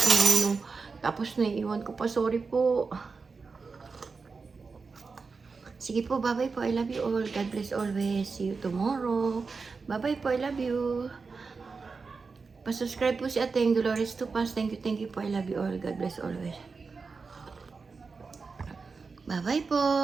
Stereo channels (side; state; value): left; quieter; 4.6 dB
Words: Tapos naiiwan ko pa. Sorry po. Sige po, bye-bye po. I love you all. God bless always. See you tomorrow. Bye-bye po. I love you. Pa-subscribe po si Ateng Dolores Tupas. Thank you po. I love you all. God bless always. Bye-bye po.